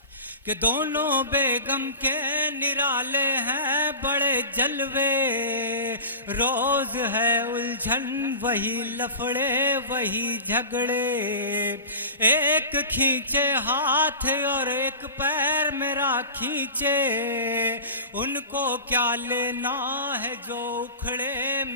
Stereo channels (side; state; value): both; inverted; correlation -0.33